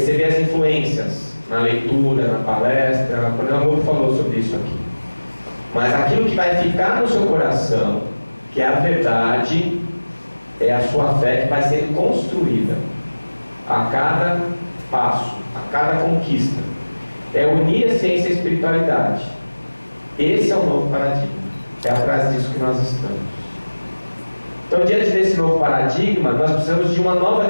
as influências na leitura, na palestra. O Coronel Amor falou sobre isso aqui. Mas aquilo que vai ficar no seu coração, que é a verdade, é a sua fé que vai sendo construída a cada passo, a cada conquista. É unir a ciência e a espiritualidade. Esse é o novo paradigma. É atrás disso que nós estamos. Então, diante desse novo paradigma, nós precisamos de uma nova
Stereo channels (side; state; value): both; inverted; correlation -1.00